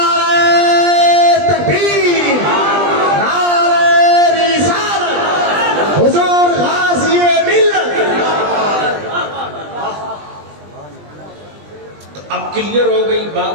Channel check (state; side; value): late; left; 20 ms